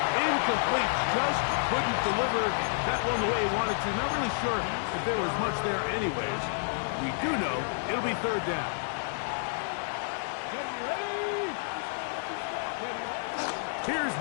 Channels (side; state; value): right; silent; digital silence